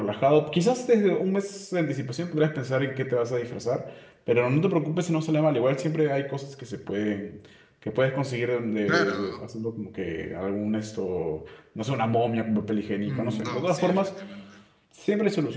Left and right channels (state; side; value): identical; both; correlation 1.00